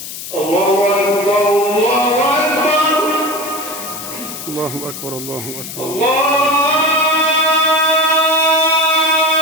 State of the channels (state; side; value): noise; left; hiss, 10 dB below the sound